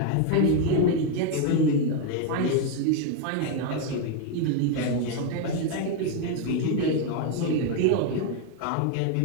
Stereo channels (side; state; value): both; different; correlation 0.01